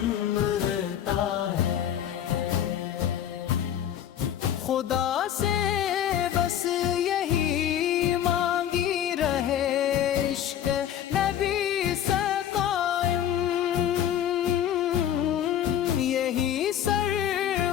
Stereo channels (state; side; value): quieter; right; 10.3 dB